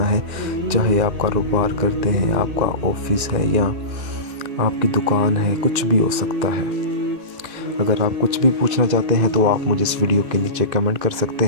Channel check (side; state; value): left; late; 2.5 ms